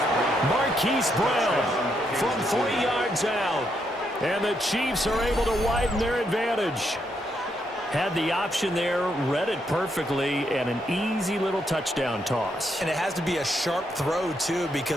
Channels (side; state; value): both; normal; correlation 0.78